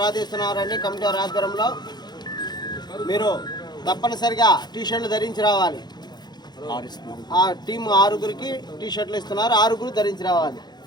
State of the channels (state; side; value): late; right; 0.21 ms